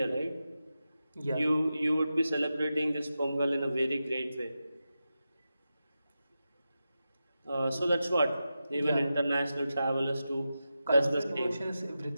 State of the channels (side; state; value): both; inverted; correlation -0.91